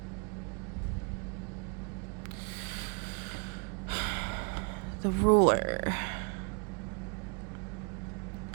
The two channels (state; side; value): quieter; left; 38.7 dB